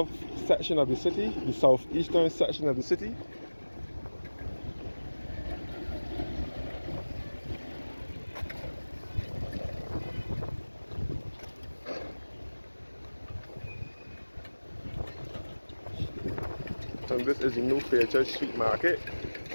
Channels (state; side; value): inverted; both; correlation -1.00